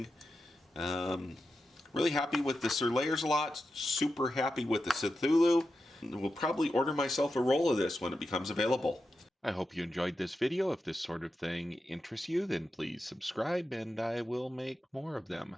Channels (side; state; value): both; normal; correlation 0.89